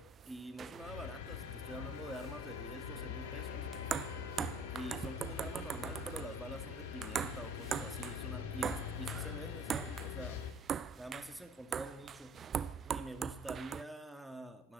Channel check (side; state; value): both; normal; correlation 0.52